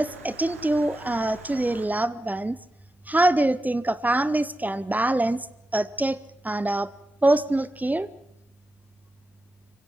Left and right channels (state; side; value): normal; both; correlation 0.90